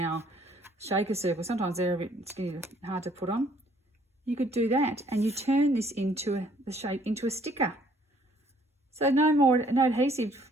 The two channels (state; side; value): normal; both; correlation 0.62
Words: our shaker circle, sometimes they're a bit skinny, hard to put on. You could do that, and you turn this into the shape into a sticker. So no adhesive